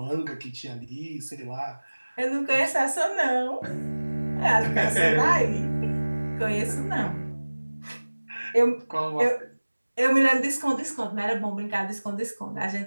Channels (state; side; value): inverted; both; correlation -1.00